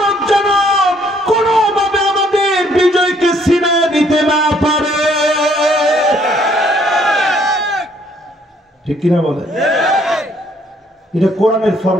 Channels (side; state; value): both; normal; correlation 0.65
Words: যেন কোনোভাবে আমাদের বিজয়কে ছিনিয়ে নিতে না পারে। ঠিক কিনা বলে? এটা কোরআনের